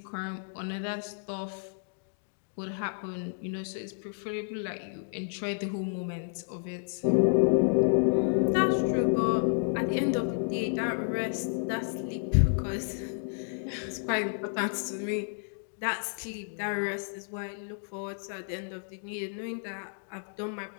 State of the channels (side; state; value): right; silent; digital silence